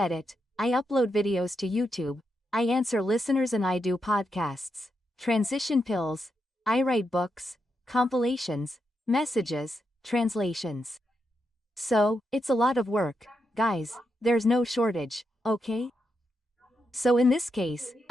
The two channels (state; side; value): normal; both; correlation 0.84